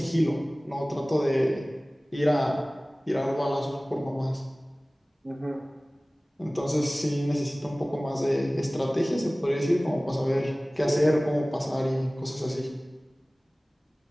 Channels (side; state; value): both; normal; correlation 0.98